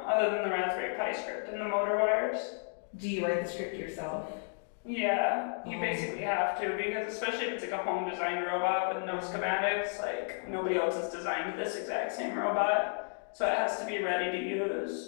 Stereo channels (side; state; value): right; silent; 56 dB below the other